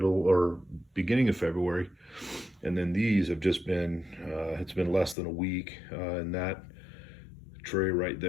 or beginning of February, and then these have just been it's been less than a week, and that tray right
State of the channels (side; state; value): right; drops out; at 5.2 s